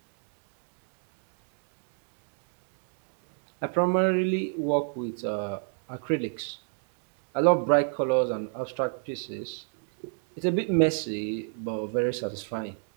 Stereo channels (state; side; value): silent; left; 58 dB below the other